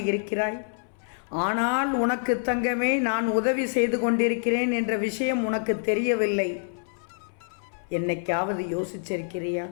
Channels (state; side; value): silent; right; 60 dB below the other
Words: இருக்கிறாய். ஆனால் உனக்கு தங்கமே, நான் உதவி செய்து கொண்டிருக்கிறேன் என்ற விஷயம் உனக்கு தெரியவில்லை. என்னைக்காவது யோசிச்சிருக்கிறியா?